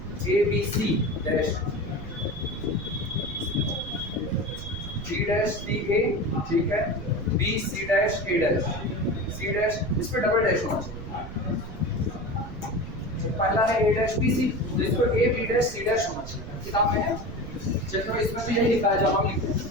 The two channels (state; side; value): noise; right; rumble, 11 dB below the sound